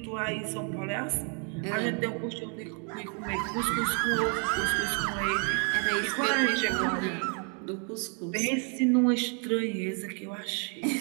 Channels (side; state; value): left; quieter; 39.2 dB